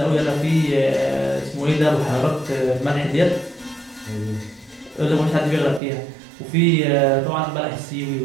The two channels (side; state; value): left; drops out; at 5.8 s